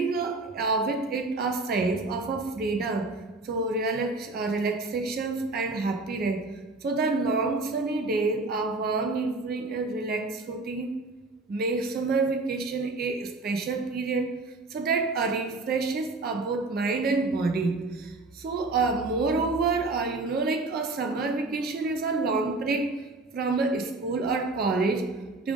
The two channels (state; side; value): quieter; left; 3.3 dB